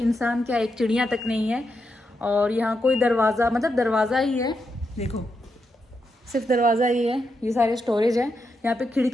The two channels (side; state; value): both; normal; correlation 0.84